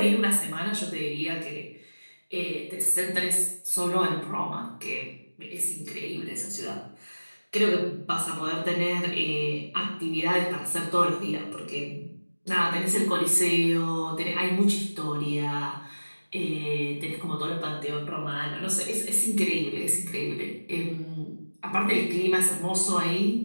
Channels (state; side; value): inverted; both; correlation -1.00